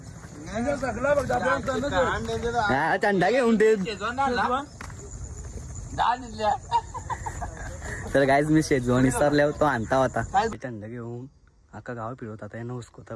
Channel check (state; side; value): identical; both; correlation 1.00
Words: थंडा घेऊन ते तर गाईज मी शेजवान विसरल्यावर तो आणता होता थंडा घेऊन अख्खा गाव फिरवत आता यांना